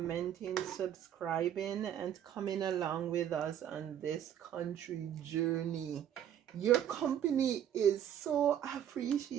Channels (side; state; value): left; quieter; 10.0 dB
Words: subscribing, and coming along with us on this country journey. Your company is so